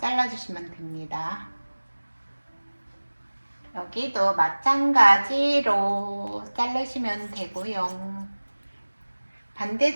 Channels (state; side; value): inverted; both; correlation -1.00